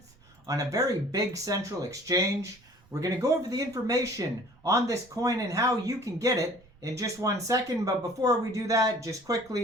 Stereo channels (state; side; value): noise; right; rumble, 28 dB below the sound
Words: on a very big central exchange. We're going to go over the information on this coin and how you can get it in just 1 second, but before we do that, just